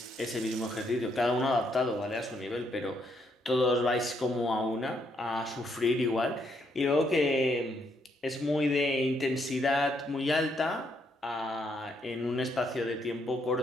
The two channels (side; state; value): both; normal; correlation 0.74